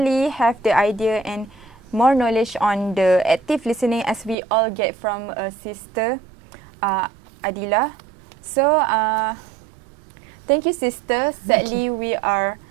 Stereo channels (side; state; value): left; drops out; at 4.4 s